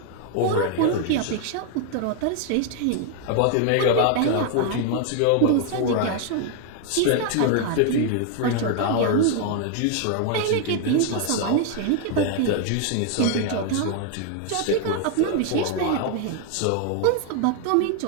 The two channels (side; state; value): both; different; correlation 0.00